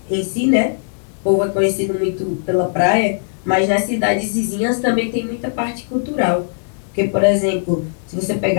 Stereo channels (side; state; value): right; silent; digital silence